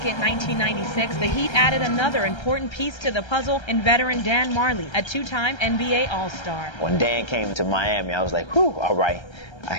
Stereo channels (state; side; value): late; right; 1.3 ms